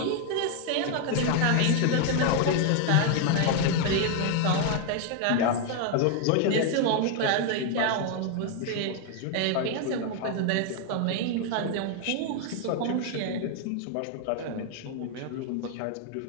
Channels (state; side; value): different; both; correlation 0.00